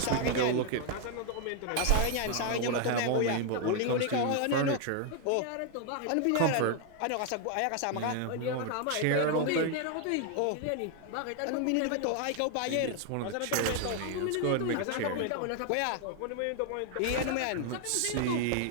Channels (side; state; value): both; different; correlation 0.00